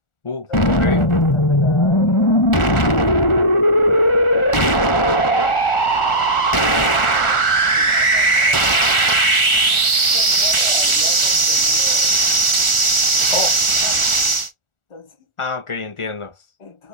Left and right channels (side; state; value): right; late; 1.4 ms